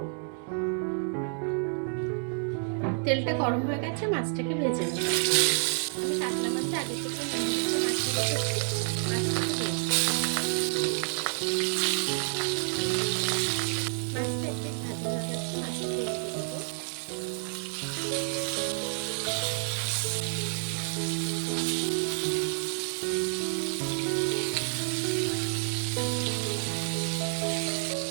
তেলটা গরম হয়ে গেছে, মাছটাকে ভেজে নেব। আমি কাতলা মাছ আগে থেকে নিয়ে মাছটা রেখেছি, মাছটাকে দিয়েছি। মাছটা একটু ভাজা হয়ে গেছে, মাছটা দিয়ে দেবো।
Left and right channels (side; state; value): left; silent; 58 dB below the other